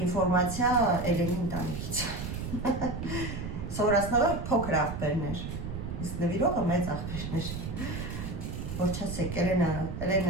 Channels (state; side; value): noise; right; rumble, 6 dB below the sound